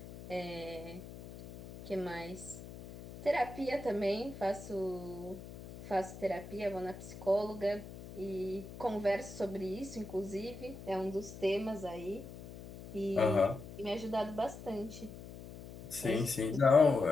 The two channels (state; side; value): noise; left; hum, 14 dB below the sound